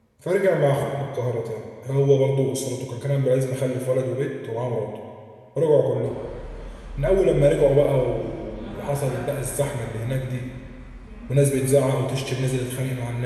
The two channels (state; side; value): identical; both; correlation 1.00